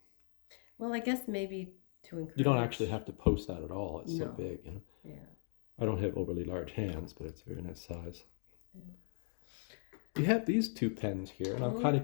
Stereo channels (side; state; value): right; silent; 52 dB below the other